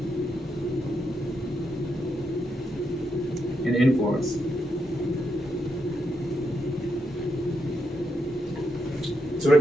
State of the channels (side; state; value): both; normal; correlation 0.82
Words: and influence. So when